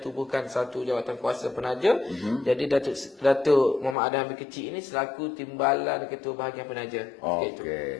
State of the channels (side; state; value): right; drops out; at 4.0 s